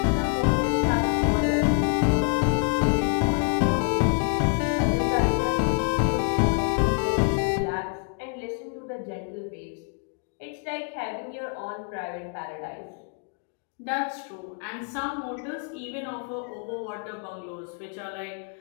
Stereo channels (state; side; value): quieter; right; 39.7 dB